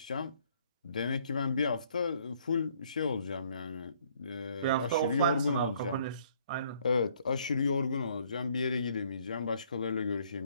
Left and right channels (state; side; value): inverted; both; correlation -0.64